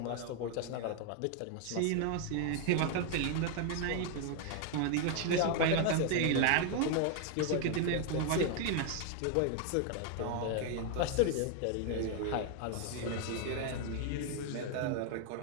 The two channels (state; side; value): different; both; correlation 0.00